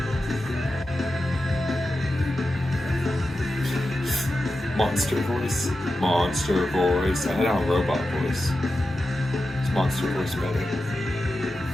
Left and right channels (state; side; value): normal; both; correlation 0.91